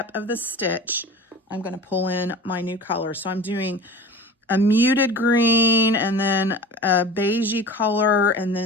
of the stitch, I'm going to pull in my new color. So I'm doing a muted green, and then a beigey color, and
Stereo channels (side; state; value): both; normal; correlation 0.37